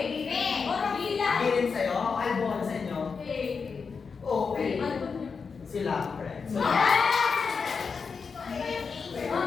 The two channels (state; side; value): quieter; right; 5.4 dB